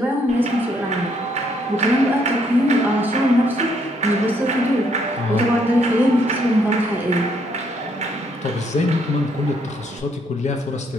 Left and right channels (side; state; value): both; normal; correlation 0.70